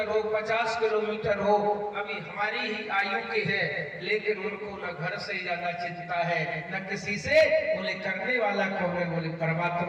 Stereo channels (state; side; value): identical; both; correlation 1.00